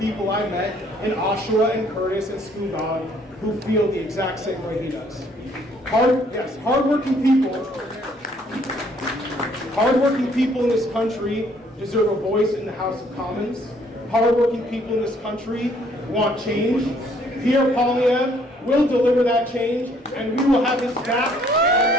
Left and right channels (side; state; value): both; normal; correlation 0.63